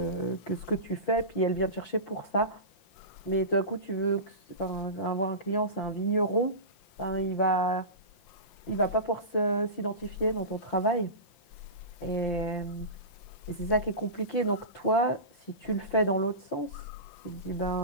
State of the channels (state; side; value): late; right; 5.8 ms